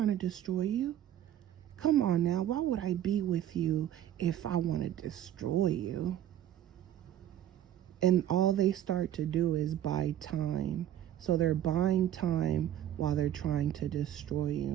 to destroy you. Come on now, why would I be with you if I want to destroy you? And all they start to do is buy time. So they're buying time while they're trying to destroy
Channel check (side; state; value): left; quieter; 11.4 dB